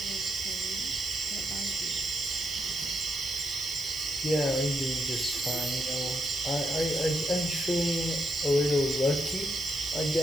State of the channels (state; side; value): noise; right; hiss, 14 dB below the sound